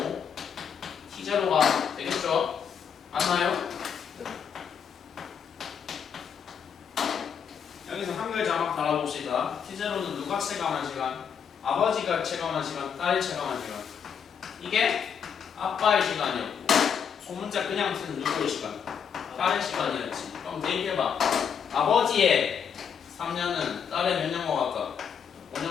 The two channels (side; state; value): right; quieter; 7.3 dB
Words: t0가 되겠죠? 맞나요? 여기서 한글 자막 달아봅시다. t0는 누가 체감한 시간? 아버지가 체감한 시간, 딸이 체감한 시간. 이게 아빠의 시간이었고 소문자 그냥 쓰는 누구의 시간? 딸의 시간이었지. 그럼 대입해봐. 아버지의 3년은 딸의 몇 년과 같다?